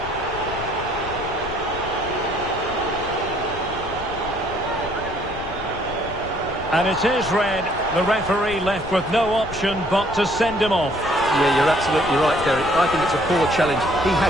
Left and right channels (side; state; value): left; noise; rumble, 13 dB below the sound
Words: And it is red. The referee left with no option but to send him off. Yeah, you're absolutely right, Derek. I think it's a poor challenge. He